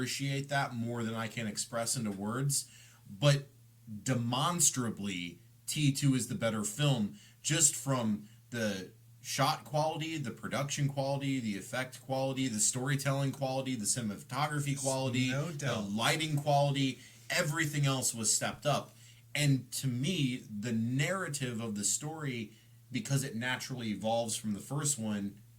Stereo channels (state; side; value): identical; both; correlation 1.00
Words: that more than I can express into words. But demonstrably, T2 is the better film just from the shot quality, the production quality, the effect quality, the storytelling quality, the cinematography quality, No the doubt. lighting quality. Everything else was stepped up. And to me, the narrative of the story, because it naturally evolves from the first one,